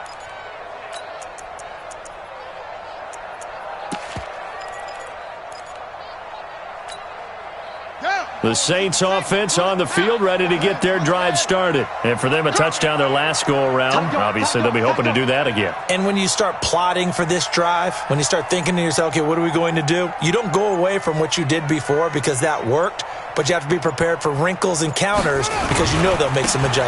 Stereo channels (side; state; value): both; identical; correlation 1.00